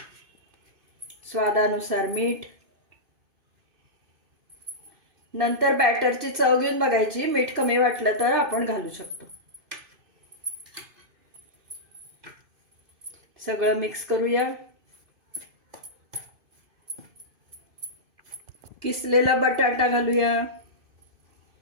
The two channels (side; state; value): left; late; 2.5 ms